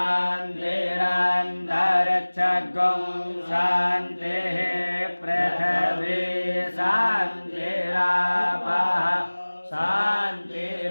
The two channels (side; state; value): both; inverted; correlation -1.00